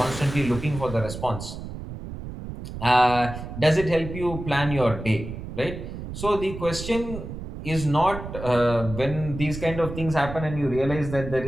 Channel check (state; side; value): noise; right; rumble, 9 dB below the sound